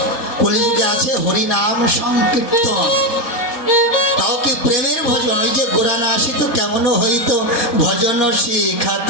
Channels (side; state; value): right; late; 4.2 ms